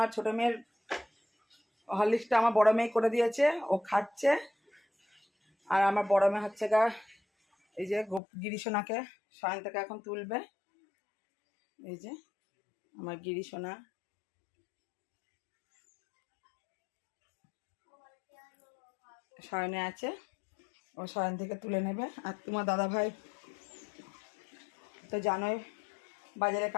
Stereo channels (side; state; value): right; drops out; at 8.2 s